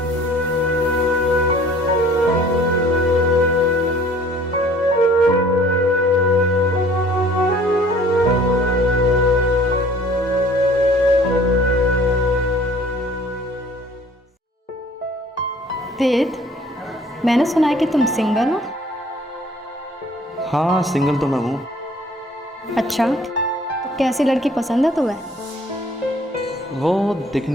वेद, मैंने सुना है कि तुम सिंगल हो। हाँ सिंगल तो मैं हूँ। अच्छा, तो कैसी लड़की पसंद है तुम्हें? वो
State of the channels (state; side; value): normal; both; correlation 0.53